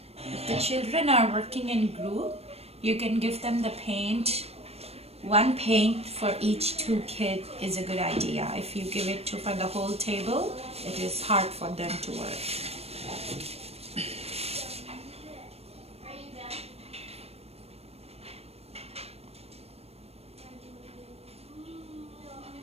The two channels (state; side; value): late; left; 0.30 ms